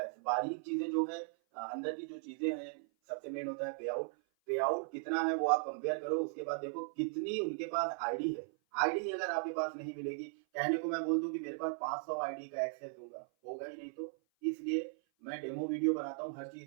बारीक चीजें जो है अंदर की जो चीजें हैं, सबसे मेन होता है पे आउट। पे आउट कितना है वो आप कंपेयर करो, उसके बाद देखो कितनी उनके पास आईडी है। आईडी अगर आपके पास नहीं मिलेगी, कहने को मैं बोल दूं कि मेरे पास 500 आईडी का एक्सेस दूंगा, होगा ही नहीं। तो इसलिए मैं डेमो वीडियो बनाता हूँ हर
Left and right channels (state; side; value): silent; left; 53 dB below the other